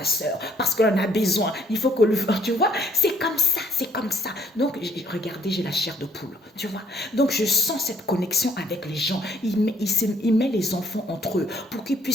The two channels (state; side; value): normal; both; correlation 0.65